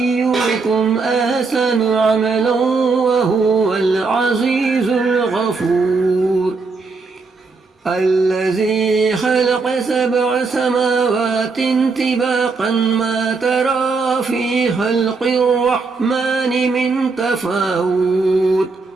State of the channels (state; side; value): quieter; left; 4.3 dB